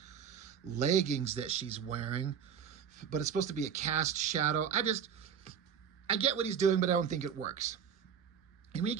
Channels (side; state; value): left; quieter; 7.8 dB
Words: leggings that she's wearing, but it's supposed to be a cast shadow. I get what he's doing, but I don't think it works. And when you